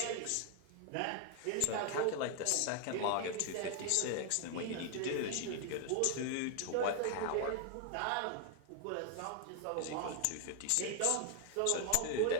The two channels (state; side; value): different; both; correlation 0.00